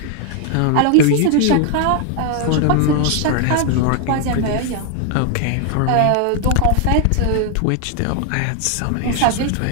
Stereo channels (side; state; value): both; different; correlation 0.00